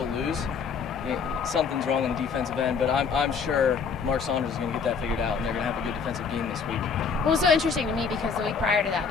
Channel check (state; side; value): quieter; right; 5.7 dB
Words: lose, something's wrong on the defensive end, but I'm sure Mark Saunders is going to get that figured out, and they're going to have a good defensive game this week. Well, it was so interesting to me because the week prior to that,